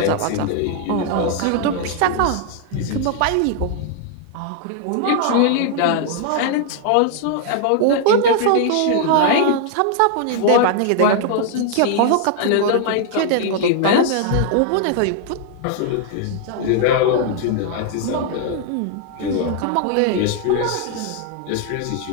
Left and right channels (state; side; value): different; both; correlation 0.00